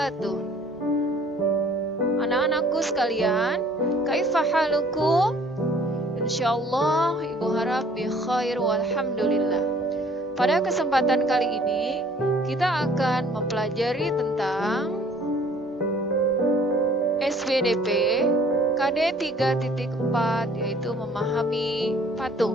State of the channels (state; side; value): normal; both; correlation 0.56